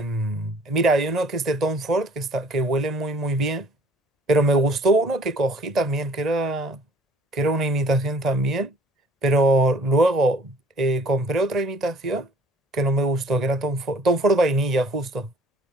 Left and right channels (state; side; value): normal; both; correlation 0.54